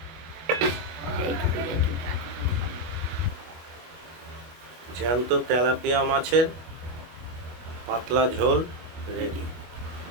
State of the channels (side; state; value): left; late; 24 ms